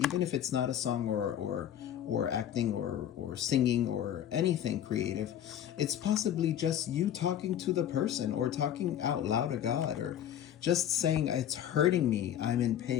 even if it's not a song or acting or singing or anything creative. It's possibly just you talking to the person, or talking out loud to God, or just saying, it's hurting me, I'm in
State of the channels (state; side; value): quieter; right; 10.6 dB